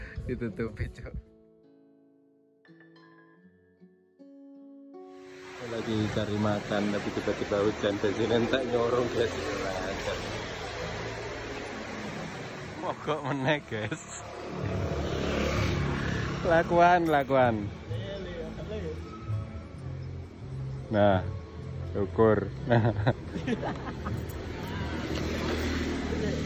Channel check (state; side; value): identical; both; correlation 1.00